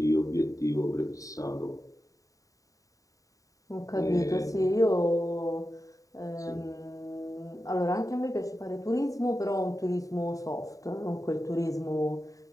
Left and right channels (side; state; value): right; late; 0.16 ms